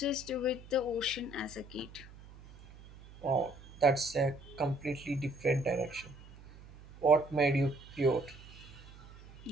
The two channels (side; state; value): right; noise; hum, 19 dB below the sound